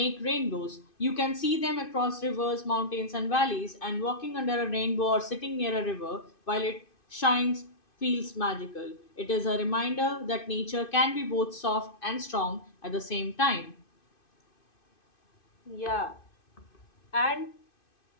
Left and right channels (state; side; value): late; right; 2.5 ms